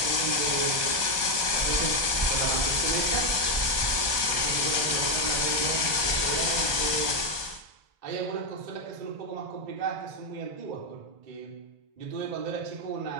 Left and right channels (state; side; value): late; left; 1.2 ms